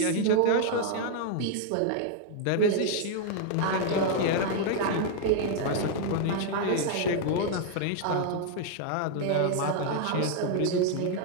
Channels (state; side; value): different; both; correlation 0.00